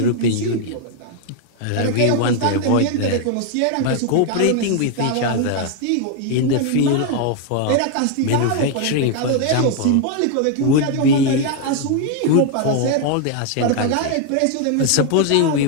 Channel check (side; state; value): both; different; correlation 0.00